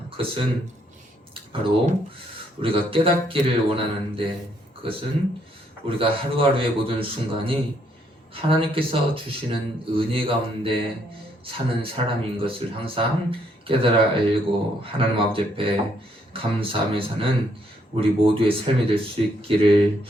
그것은 바로 우리가 깨닫기를 원하는데 그것은 우리가 하루하루의 모든 순간이 하나님께서 주시는 은혜 가운데 사는 사람인 것을 항상 깨달아 알고 하나님 아버지 앞에 감사하며 사는 우리 모두의 삶이 될 수 있기를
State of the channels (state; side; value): normal; both; correlation 0.71